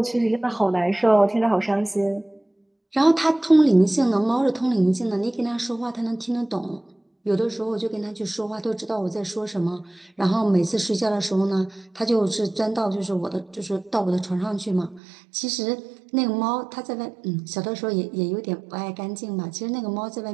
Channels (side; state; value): left; drops out; at 15.0 s